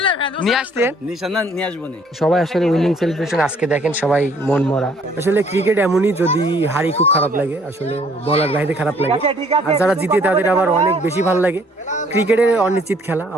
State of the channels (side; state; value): both; normal; correlation 0.61